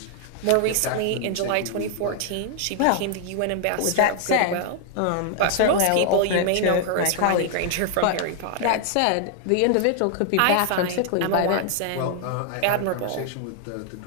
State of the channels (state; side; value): different; both; correlation 0.00